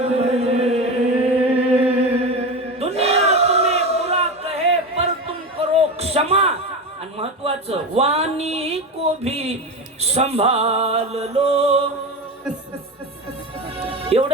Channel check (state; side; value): normal; both; correlation 0.22